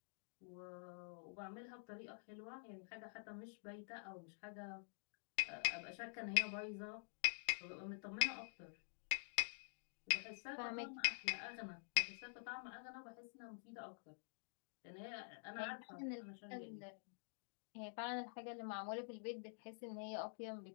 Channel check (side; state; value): right; silent; digital silence